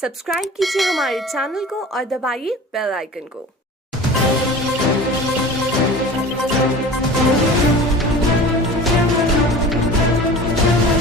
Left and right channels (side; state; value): both; normal; correlation 0.38